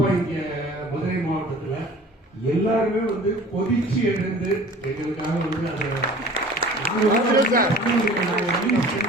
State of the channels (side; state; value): both; normal; correlation 0.45